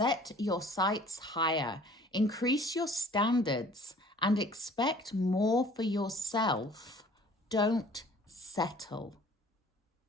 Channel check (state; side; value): normal; both; correlation 0.52